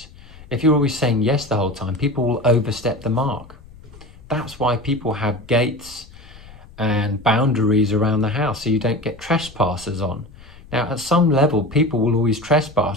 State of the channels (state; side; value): noise; left; rumble, 21 dB below the sound